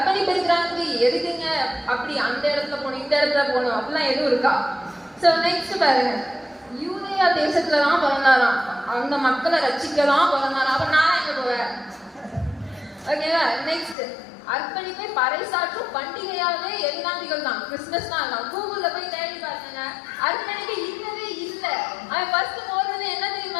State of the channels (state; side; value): drops out; right; at 14.0 s